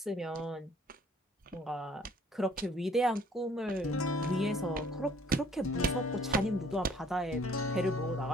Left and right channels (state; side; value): normal; both; correlation 0.58